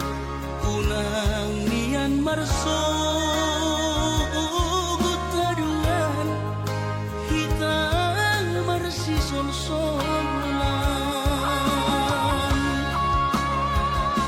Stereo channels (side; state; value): both; identical; correlation 1.00